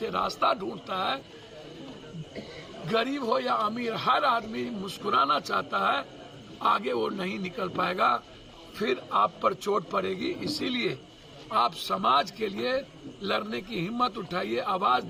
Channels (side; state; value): both; identical; correlation 1.00